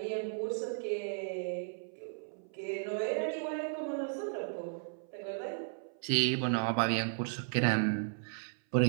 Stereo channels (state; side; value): silent; left; 54 dB below the other